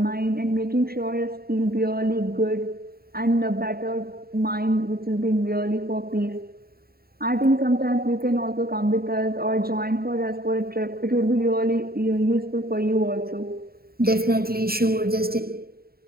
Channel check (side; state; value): left; late; 0.45 ms